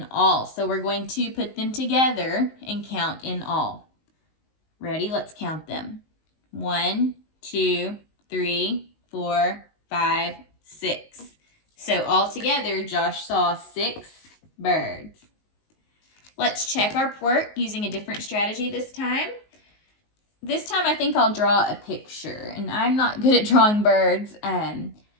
all. So we're going to put them together and count in all. Ready? Let's count them. 1, 2, 3, 4, 5, 6. So all together, Josh saw 6 birds. Let's check our work using a different strategy this time. This time I think I'll draw a picture, and I'm not good at drawing birds, but I'm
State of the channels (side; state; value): right; late; 19 ms